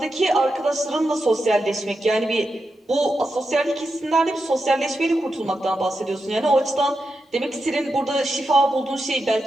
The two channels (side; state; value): both; normal; correlation 0.88